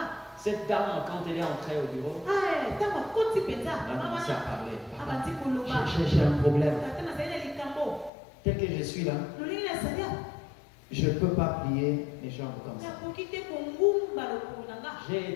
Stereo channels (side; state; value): right; drops out; at 8.1 s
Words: Cette dame, quand elle est entrée au bureau, elle a commencé à parler. J'ai un problème. Tel que je suis là, je ne peux pas plier mes jambes comme ça.